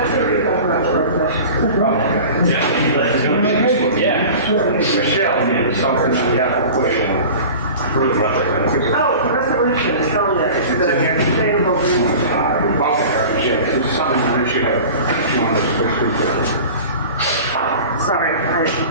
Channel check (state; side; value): inverted; both; correlation -0.38